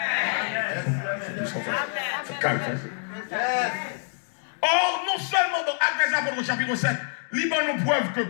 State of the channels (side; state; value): right; silent; digital silence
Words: C'est calme. Or, non seulement dans Actes des Apôtres, chapitre 7, libre nous preuve que